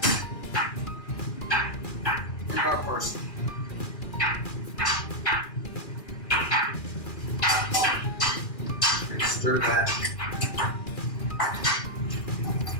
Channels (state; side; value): late; right; 2.4 ms